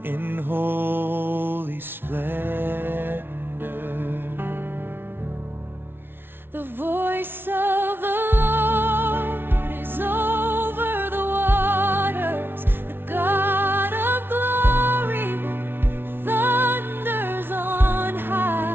in holy splendor. The voice of the Lord is over the waters. The God of glory thunders on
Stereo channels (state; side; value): late; left; 0.11 ms